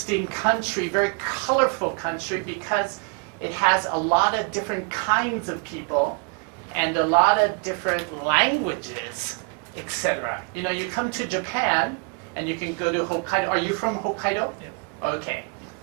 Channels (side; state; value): left; quieter; 37.8 dB